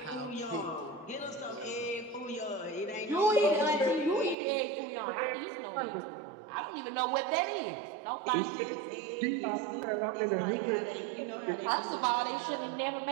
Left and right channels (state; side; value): drops out; left; at 4.4 s